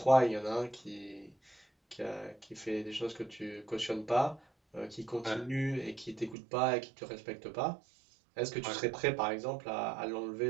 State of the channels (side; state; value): left; drops out; at 6.4 s